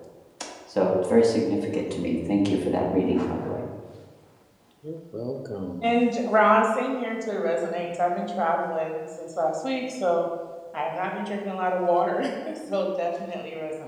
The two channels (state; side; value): identical; both; correlation 1.00